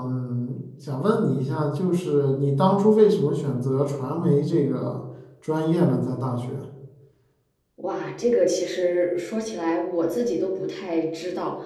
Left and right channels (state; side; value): identical; both; correlation 1.00